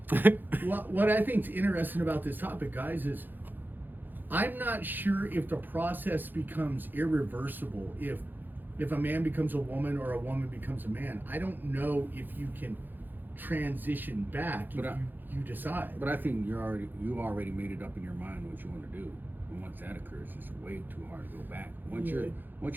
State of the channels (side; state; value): left; late; 0.089 ms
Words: What I think's interesting about this topic, guys, is I'm not sure if the process becomes irreversible if a man becomes a woman or a woman becomes a man. I don't know if you can transition back if you decide. But I think you already made it up in your mind what you want to do, and once that occurs, it's way too hard to go back. Once your